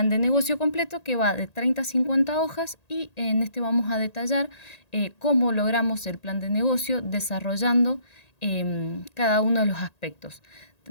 de negocio completo que va de 30 a 50 hojas y en este vamos a detallar cómo logramos el plan de negocio desarrollando cada uno de los aspectos.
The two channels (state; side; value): late; right; 1.8 ms